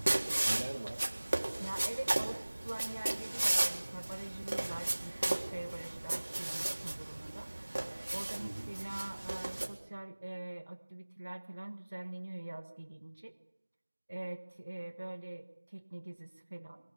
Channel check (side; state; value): both; inverted; correlation -1.00